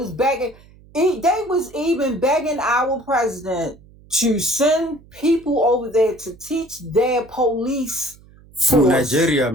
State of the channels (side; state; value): right; noise; hum, 25 dB below the sound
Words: begging. They was even begging our president to send people over there to teach their police Who? force. Nigeria,